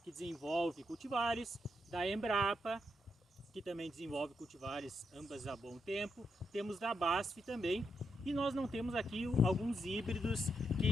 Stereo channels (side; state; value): both; normal; correlation 0.82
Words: que desenvolve cultivares, da Embrapa, que também desenvolve cultivares ambas há bom tempo, temos da BASF também, e nós não temos aqui alguns híbridos